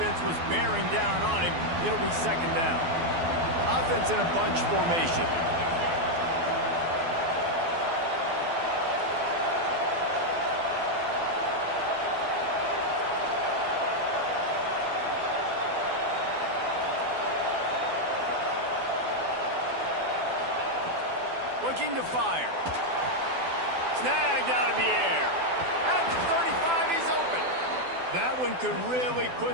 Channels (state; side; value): late; left; 12 ms